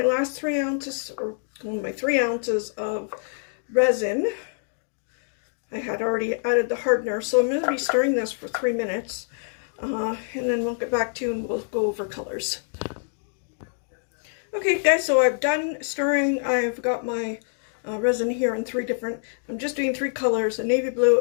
last 3 ounces, or my 3 ounces of resin. I had already added the hardener, so I'm going to be stirring this for 3 minutes, and then we'll get back to you and we'll go over colors. Okay guys, so I've done stirring. I've got my resin here in I'm just doing 3 colors, a navy blue,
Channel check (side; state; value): right; silent; digital silence